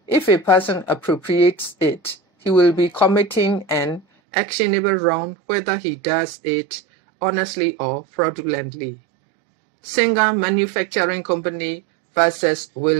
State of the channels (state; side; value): drops out; left; at 4.0 s